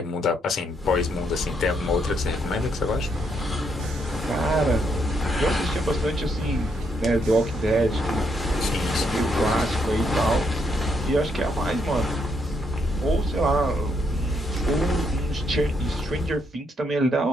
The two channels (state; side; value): normal; both; correlation 0.75